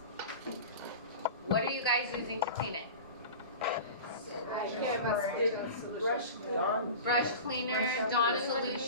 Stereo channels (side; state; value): both; inverted; correlation -0.33